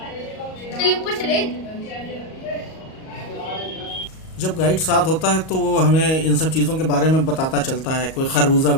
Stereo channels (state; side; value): late; right; 38 ms